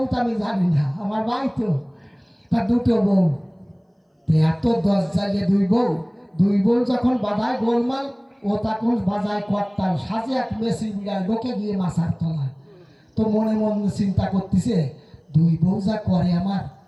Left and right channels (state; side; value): identical; both; correlation 1.00